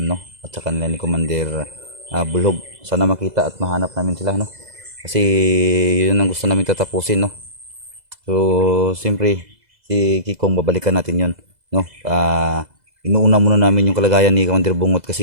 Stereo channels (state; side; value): late; left; 2.0 ms